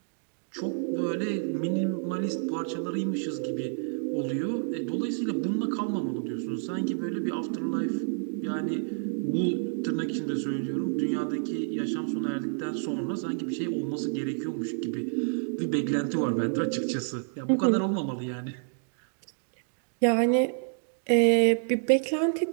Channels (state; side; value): silent; left; 59 dB below the other